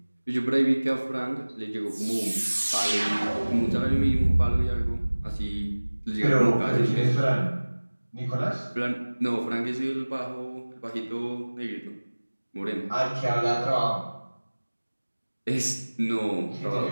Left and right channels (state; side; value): inverted; both; correlation -1.00